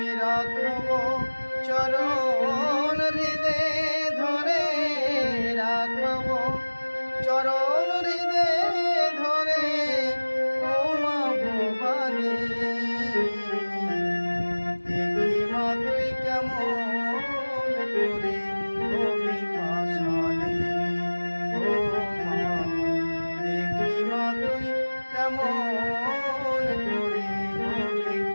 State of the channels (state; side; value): inverted; both; correlation -1.00